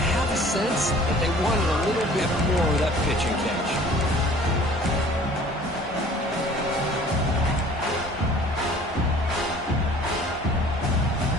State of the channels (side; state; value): both; normal; correlation 0.50